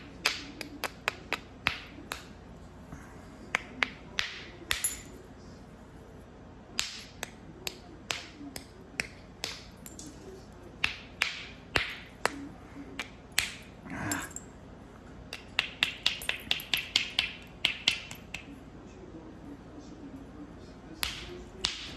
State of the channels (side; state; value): both; identical; correlation 1.00